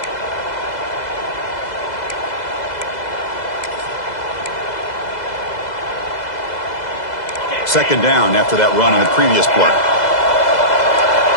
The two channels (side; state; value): right; late; 2.0 ms